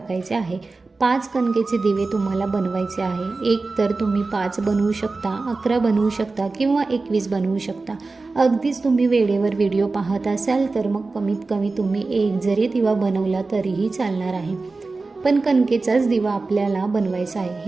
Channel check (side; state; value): left; quieter; 3.7 dB